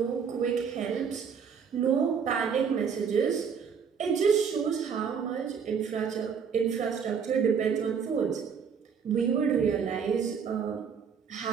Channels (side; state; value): left; quieter; 6.7 dB